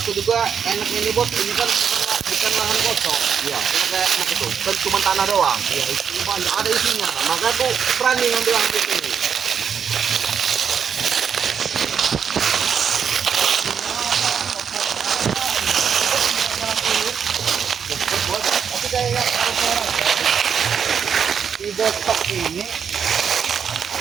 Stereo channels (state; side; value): quieter; left; 7.3 dB